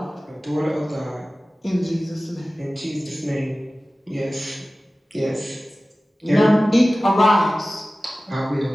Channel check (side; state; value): both; normal; correlation 0.97